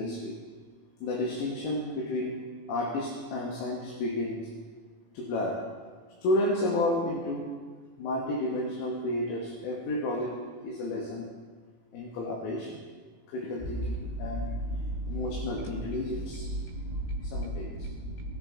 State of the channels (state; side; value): late; right; 18 ms